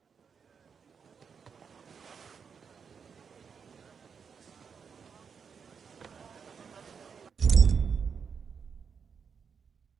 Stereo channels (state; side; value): quieter; left; 6.3 dB